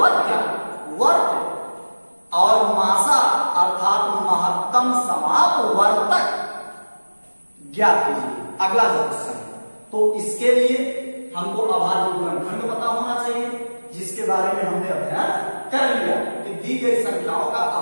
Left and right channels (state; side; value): inverted; both; correlation -1.00